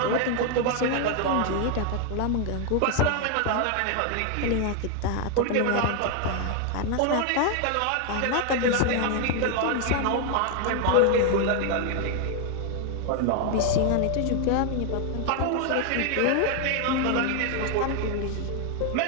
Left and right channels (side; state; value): both; different; correlation 0.01